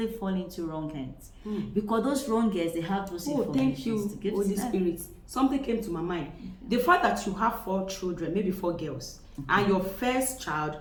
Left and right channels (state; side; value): identical; both; correlation 1.00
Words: fall into wrong hands. Because those wrong hands, they have those thank you, Holy Spirit. Something came to my mind. The fact that you have 4 children, maybe 4 girls, and your first child